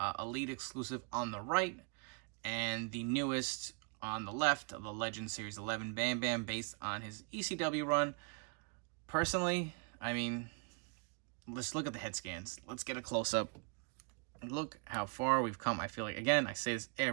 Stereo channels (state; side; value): quieter; left; 36.8 dB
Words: Elite exclusive on the right. And the newest on the left of the Legends Series 11 Bam Bam based on his ECW run. Personally, I mean, let's look at the head scans. Let's get a close-up. Look how far we've come. I feel like, again, I say this